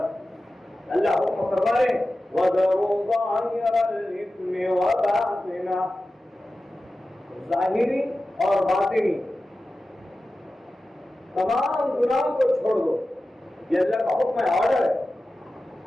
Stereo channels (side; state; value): both; normal; correlation 0.94